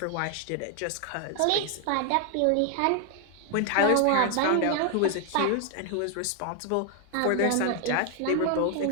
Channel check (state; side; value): different; both; correlation 0.00